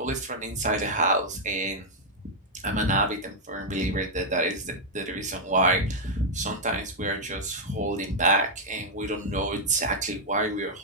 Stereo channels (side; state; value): both; normal; correlation -0.03